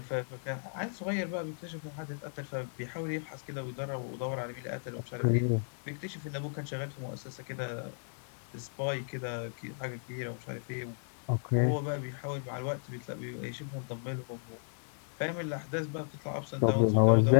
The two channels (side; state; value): right; silent; 55 dB below the other